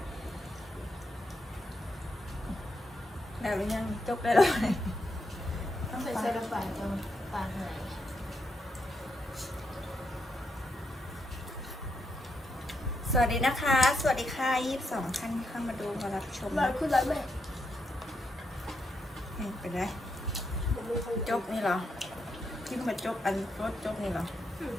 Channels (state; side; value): normal; both; correlation 0.81